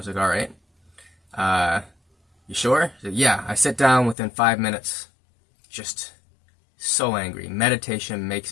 like, all right. You sure? She said, yeah, I sit down within 5 minutes, just so angry. Meditation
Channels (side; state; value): right; drops out; at 4.2 s